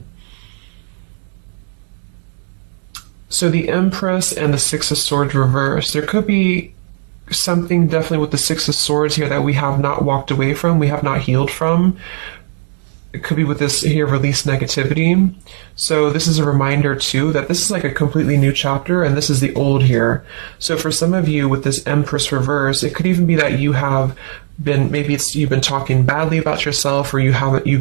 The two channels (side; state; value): left; silent; digital silence